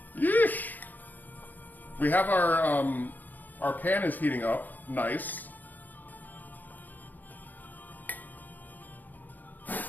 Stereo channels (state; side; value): late; right; 0.085 ms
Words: Yeesh! We have our pan is heating up. Nice.